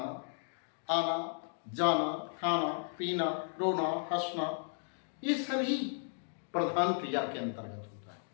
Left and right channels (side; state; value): right; silent; digital silence